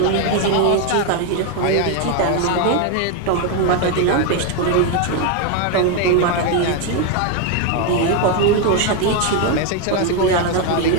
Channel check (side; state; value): both; different; correlation 0.02